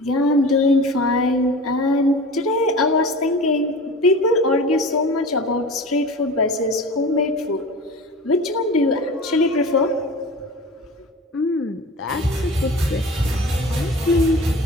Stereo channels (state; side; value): normal; both; correlation 0.36